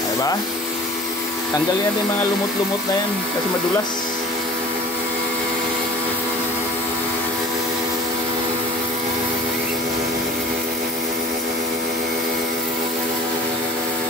Diba? Tanggalin natin mga lumot-lumot na yan kasi madulas.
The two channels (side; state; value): both; normal; correlation 0.42